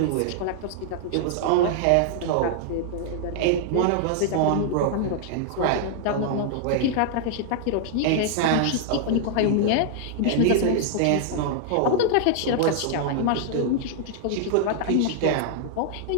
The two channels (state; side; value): different; both; correlation -0.01